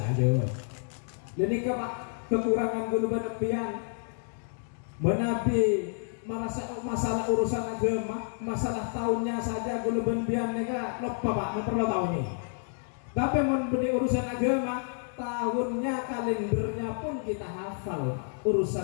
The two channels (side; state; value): right; silent; 58 dB below the other